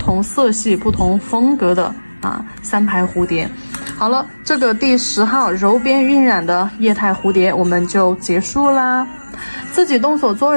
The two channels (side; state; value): both; inverted; correlation -1.00